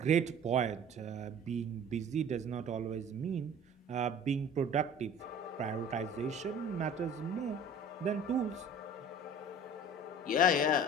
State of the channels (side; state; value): both; normal; correlation 0.44